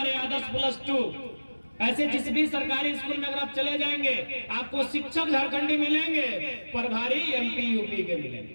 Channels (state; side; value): inverted; both; correlation -1.00